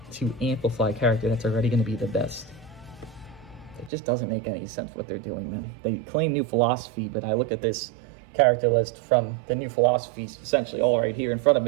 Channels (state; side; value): drops out; left; at 3.9 s